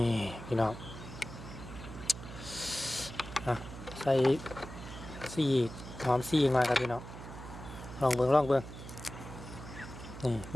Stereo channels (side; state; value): right; noise; hum, 12 dB below the sound